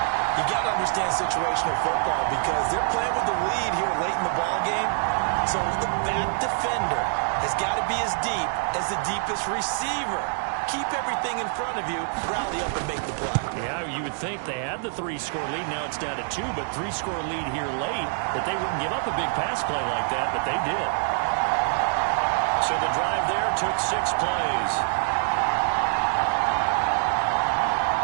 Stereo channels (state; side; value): silent; left; digital silence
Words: You got to understand situational football because they're playing with the lead here late in the ball game. So the back defender has got to be as deep as the deepest receiver. Keep everything in front of you, rally up and make the play. Yeah, you would think they had the 3-score lead. Now it's down to 2, but 3-score lead here late, that they wouldn't give up a big pass play like that, but they did. So the drive there took 6 plays.